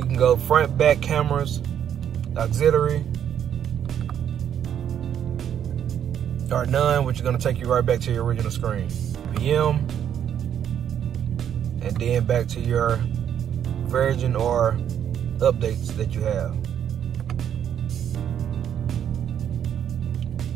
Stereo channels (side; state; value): left; quieter; 9.3 dB